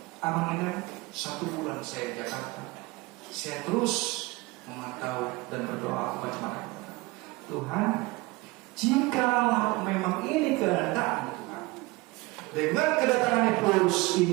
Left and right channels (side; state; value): left; quieter; 22.9 dB